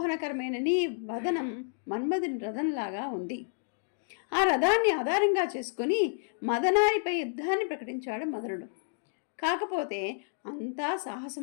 నీ వదనం మన్మధుని రథంలాగా ఉంది. ఆ రథాన్ని ఆధారంగా చేసుకుని మదనారిపై యుద్ధాన్ని ప్రకటించాడు మదనుడు. కాకపోతే అంతా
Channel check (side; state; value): right; silent; digital silence